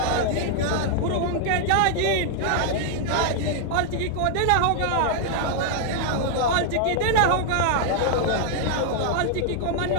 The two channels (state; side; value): different; both; correlation 0.00